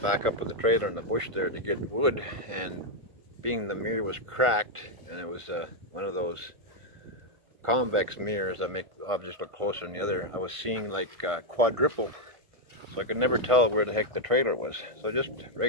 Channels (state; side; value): late; left; 1.5 ms